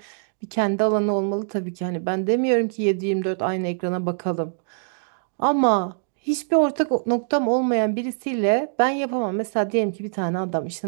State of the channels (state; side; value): silent; left; digital silence